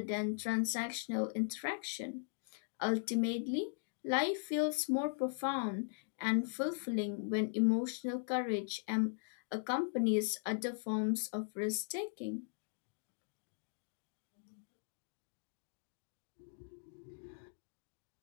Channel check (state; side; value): silent; right; digital silence